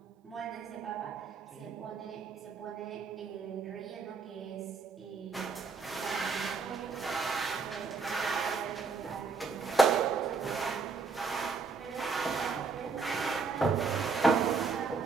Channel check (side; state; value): left; quieter; 4.6 dB